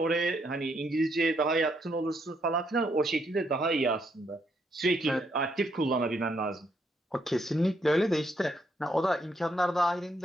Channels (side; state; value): both; normal; correlation 0.75